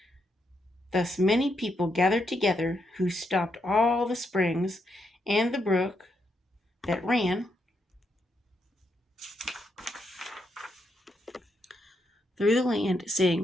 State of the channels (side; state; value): both; normal; correlation 0.80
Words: Thus many people gathered together who stopped all the springs and the brook that ran through the land,